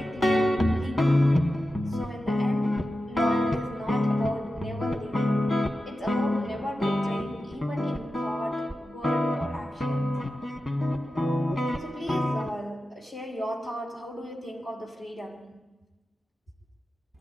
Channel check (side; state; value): both; normal; correlation 0.92